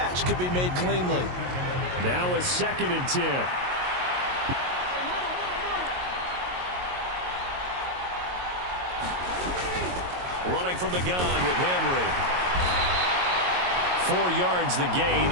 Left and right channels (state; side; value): late; left; 22 ms